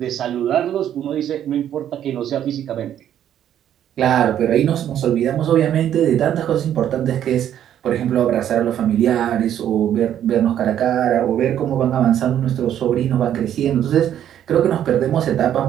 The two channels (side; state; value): left; quieter; 10.5 dB